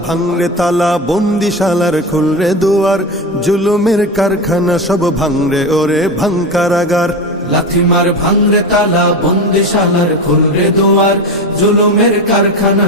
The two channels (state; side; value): normal; both; correlation 0.21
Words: ভাঙরে তালা, বন্দিশালার খুলরে দুয়ার, জুলুমের কারখানা সব ভাঙরে ওরে ভাঙ কারাগার। লাথিমার ভাঙরে তালা, বন্দিশালার খুলরে দুয়ার, জুলুমের কারখানা